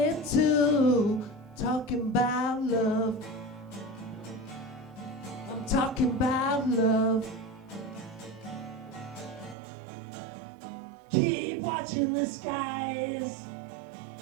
to. Talking about love. I'm talking about love. Keep watching the skies.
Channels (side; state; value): left; drops out; at 9.6 s